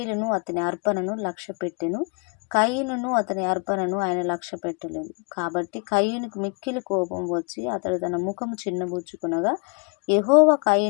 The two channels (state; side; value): quieter; right; 34.6 dB